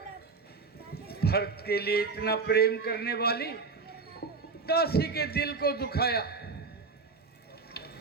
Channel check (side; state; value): left; quieter; 4.5 dB